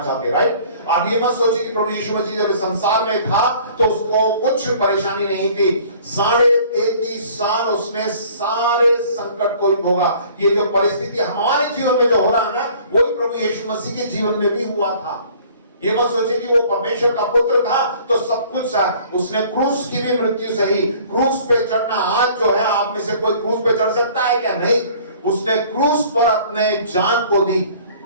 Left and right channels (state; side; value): inverted; both; correlation -0.52